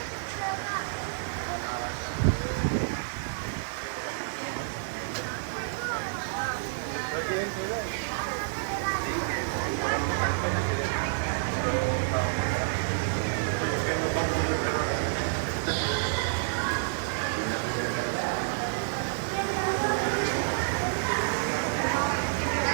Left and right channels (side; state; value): left; silent; digital silence